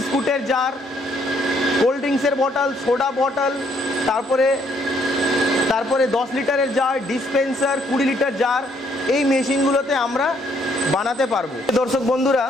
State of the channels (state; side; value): normal; both; correlation 0.69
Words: জার, কোল্ড ড্রিঙ্কসের বটল, সোডা বটল, তারপরে 10 লিটারের জার, ডিসপেন্সার, 20 লিটার জার, এই মেশিনগুলোতে আমরা বানাতে পারবো। দর্শক বন্ধুরা,